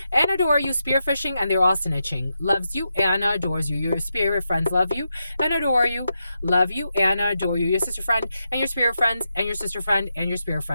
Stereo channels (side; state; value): both; inverted; correlation -0.86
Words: and adore you. Spearfishing and they're all snitching. Loves you and adores you. Your spirit friends love you and adore you. Love you and adore you. Your sister friend and your spirit friends and your sister friend and your spirit